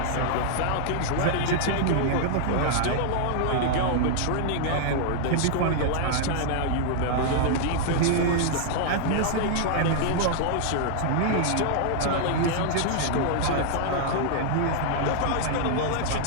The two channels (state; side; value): different; both; correlation -0.01